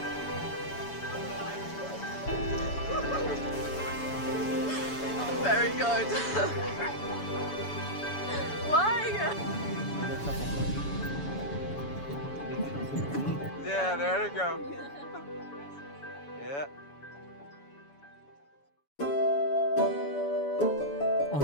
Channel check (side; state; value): right; late; 7.0 ms